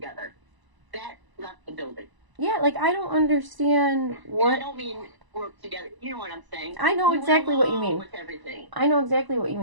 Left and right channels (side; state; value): left; late; 1.0 ms